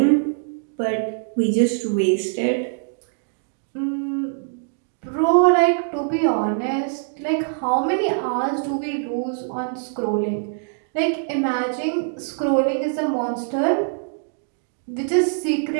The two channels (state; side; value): silent; left; digital silence